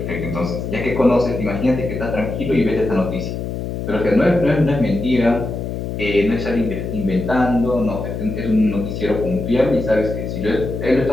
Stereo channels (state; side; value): noise; left; hum, 5 dB below the sound